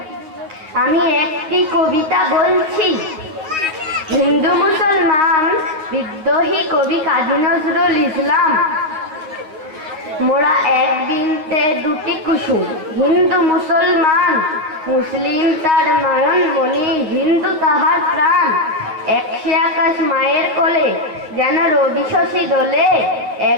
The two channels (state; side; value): late; left; 9.5 ms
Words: আমি একটি কবিতা বলছি। হিন্দু মুসলমান বিদ্রোহী কবি কাজী নজরুল ইসলাম। মোরা এক বৃন্তে দুটি কুসুম, হিন্দু মুসলমান। মুসলিম তার নয়ন মণি, হিন্দু তাহার প্রাণ। একশে আকাশ মায়ের কোলে, যেন রবি শশী দোলে।